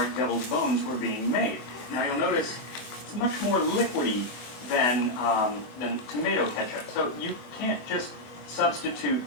deviled bones were being made. Now you'll notice it's much more liquidy than tomato ketchup, so you can't just substitute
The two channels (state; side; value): late; right; 25 ms